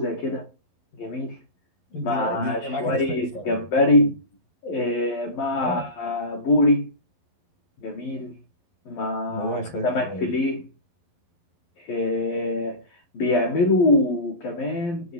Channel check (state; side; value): late; right; 11 ms